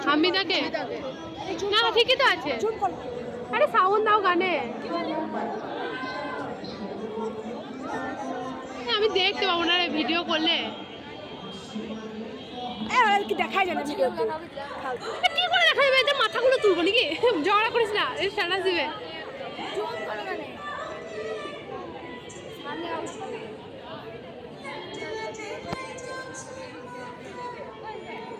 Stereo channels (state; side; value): identical; both; correlation 1.00